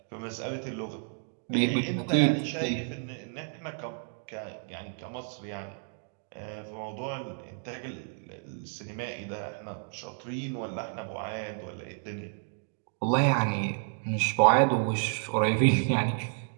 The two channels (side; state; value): left; silent; 55 dB below the other